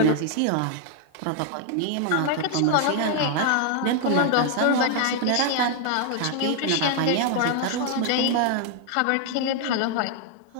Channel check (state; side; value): different; both; correlation 0.00